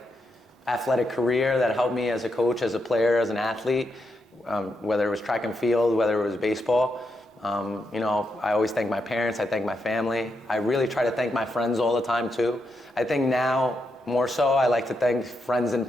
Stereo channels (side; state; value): both; normal; correlation 0.83